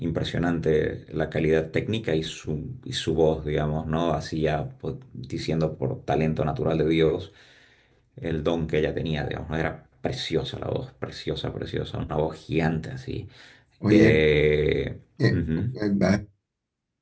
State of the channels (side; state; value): both; identical; correlation 1.00